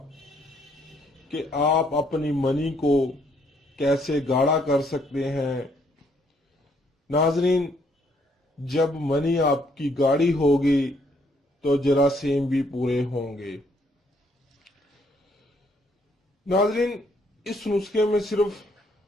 कि आप अपनी मनी को कैसे गाढ़ा कर सकते हैं। नाज़रीन, जब मनी आपकी गाढ़ी होगी तो जरासीम भी पूरे होंगे। नाज़रीन, इस नुस्खे में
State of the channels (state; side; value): normal; both; correlation 0.69